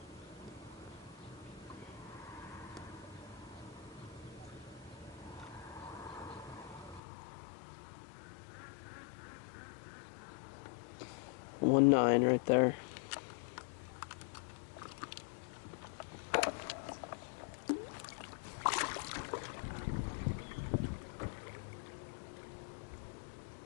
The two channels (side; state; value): right; drops out; at 7.0 s